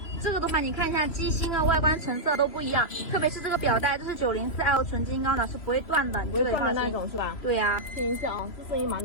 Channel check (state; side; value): late; right; 3.0 ms